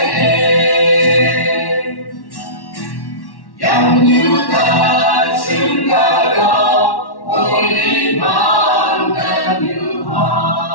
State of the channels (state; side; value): late; right; 1.1 ms